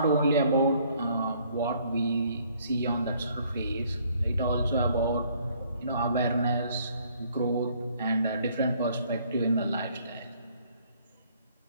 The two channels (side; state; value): both; inverted; correlation -0.63